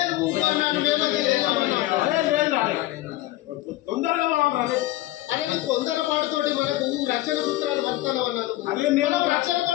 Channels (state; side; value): quieter; right; 16.9 dB